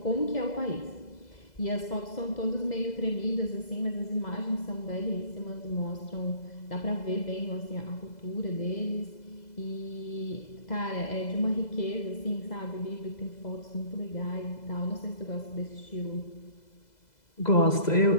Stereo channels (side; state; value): right; late; 2.0 ms